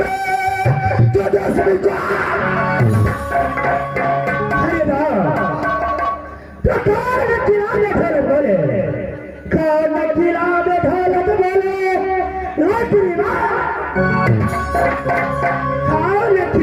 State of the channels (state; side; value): identical; both; correlation 1.00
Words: तो दसवीं को अरे ना प्रकार में किराने घर बोले कौन किराने ढोलक बोले रोटी माँ कौन